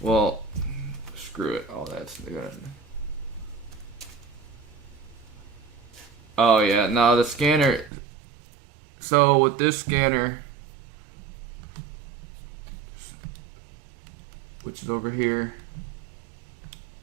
Well, screw it. All that's good. Oh yeah, no, the scanner. So with this scanner, which is over here,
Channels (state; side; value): drops out; left; at 7.9 s